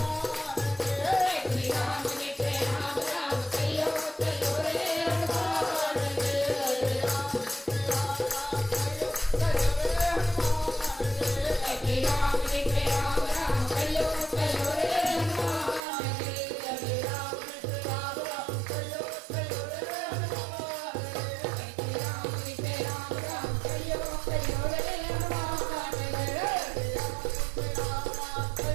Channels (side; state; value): left; drops out; at 15.8 s